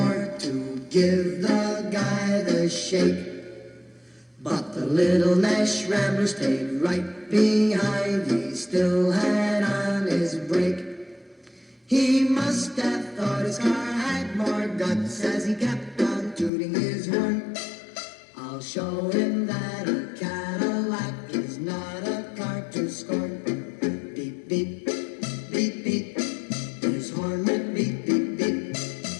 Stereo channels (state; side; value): drops out; right; at 16.5 s